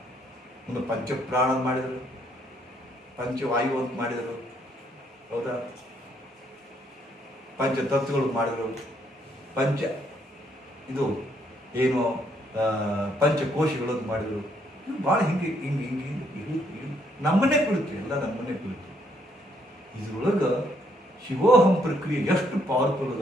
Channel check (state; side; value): normal; both; correlation 0.70